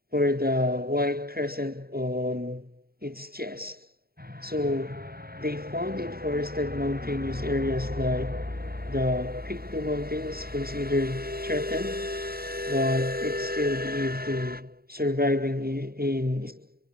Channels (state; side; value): late; left; 0.44 ms